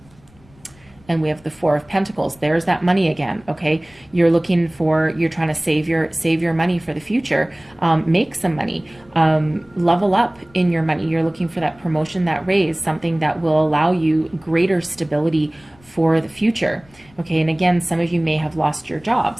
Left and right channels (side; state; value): left; noise; rumble, 28 dB below the sound